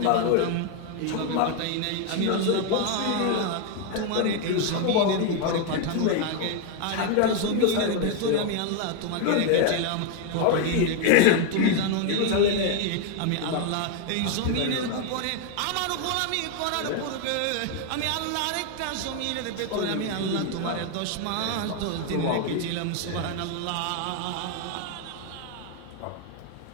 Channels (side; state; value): both; different; correlation 0.01